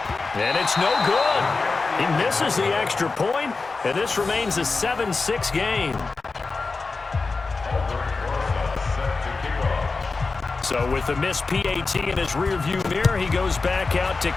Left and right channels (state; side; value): quieter; right; 4.0 dB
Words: And it's no good. He misses the extra point, and this remains a 7-6 game. So with the missed PAT in his rearview mirror, he goes back out to